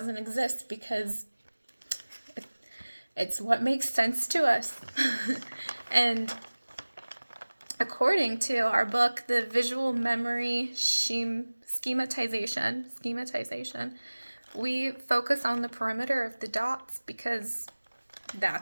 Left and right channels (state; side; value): inverted; both; correlation -1.00